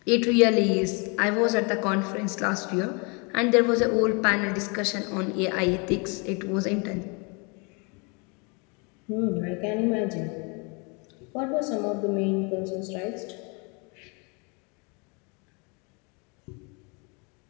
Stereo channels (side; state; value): right; quieter; 32.4 dB